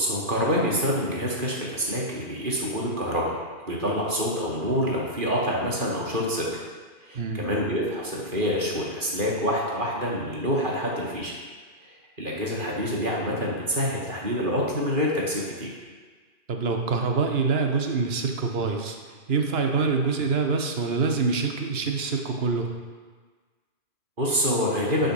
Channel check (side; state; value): left; late; 2.4 ms